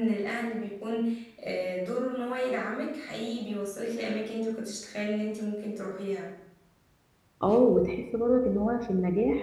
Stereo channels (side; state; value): both; identical; correlation 1.00